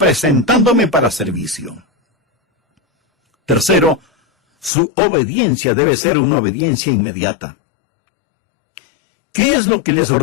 para servicio. Tercero, su obediencia debe ser una obediencia inmediata. ¿Qué es lo que les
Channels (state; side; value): drops out; right; at 4.7 s